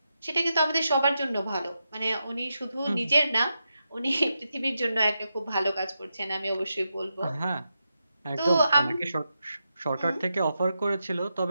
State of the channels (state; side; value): inverted; both; correlation -0.87